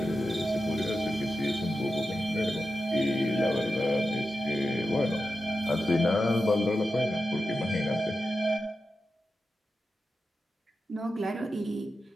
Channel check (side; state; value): both; normal; correlation 0.91